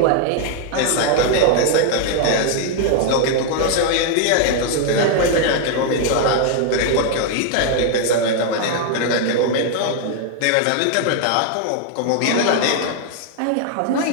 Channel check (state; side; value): different; both; correlation 0.00